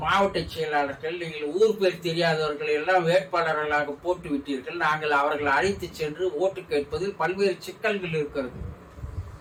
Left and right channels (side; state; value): both; identical; correlation 1.00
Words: மாவட்ட செயலாளர்கள், நீங்கள் ஊர் பேர் தெரியாதவர்கள் எல்லாம் வேட்பாளர்களாக போட்டு விட்டீர்கள், நாங்கள் அவர்களை அழைத்து சென்று ஓட்டு கேட்பதில் பல்வேறு சிக்கல்கள் இருக்கிறது